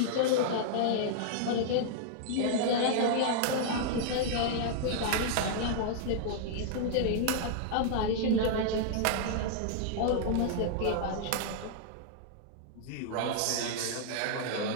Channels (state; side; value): different; both; correlation -0.01